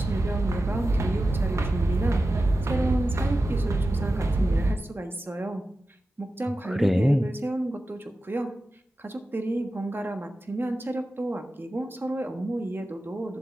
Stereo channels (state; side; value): normal; both; correlation 0.93